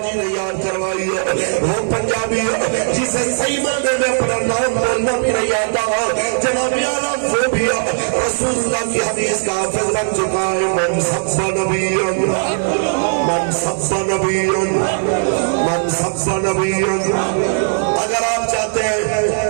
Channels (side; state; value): left; silent; digital silence